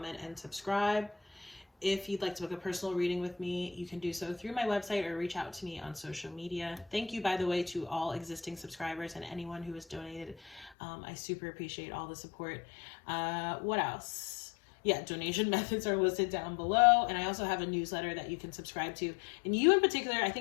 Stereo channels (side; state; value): right; drops out; at 10.7 s